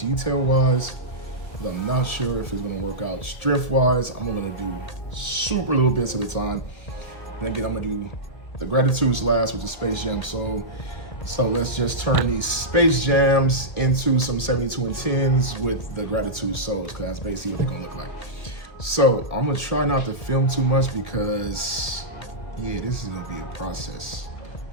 wise, but I'm not sure if it's gonna work out strength wise. I'm gonna do super little bits at a time. And again, I'm gonna do the Gratitudes last with the Space Jam Soul. So let's just turn these Space Jams into some 72 and 10s with the Gratitude Souls, because that's basically what they're gonna look like. So I'm gonna try not to film too much because, yeah, this is gonna be a process.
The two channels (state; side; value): late; right; 2.0 ms